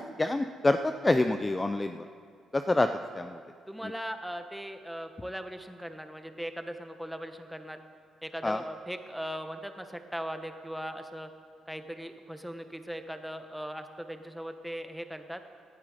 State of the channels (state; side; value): normal; both; correlation 0.96